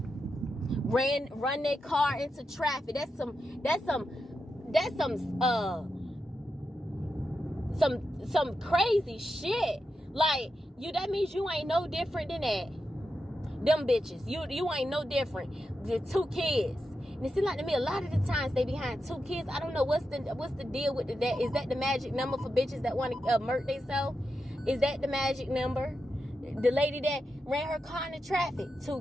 run their car into traffic. That's some crazy shit. Like that means you ain't no different than that. Them bitches, you ain't no different. The 2 kids. And it seems like to me a lot of the times they behind 2 kids. I don't know what's the deal with that. Is that the magic number for bitches that want to murk themselves? Is that the magic number? The lady that ran her car in the traffic, 2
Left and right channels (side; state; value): both; normal; correlation 0.88